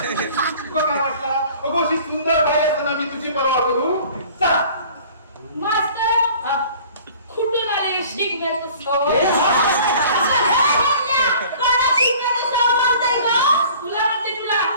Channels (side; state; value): both; inverted; correlation -0.48